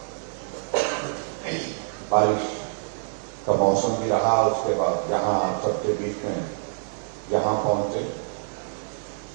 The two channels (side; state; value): left; silent; digital silence